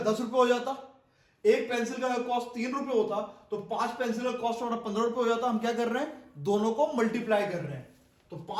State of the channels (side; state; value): both; identical; correlation 1.00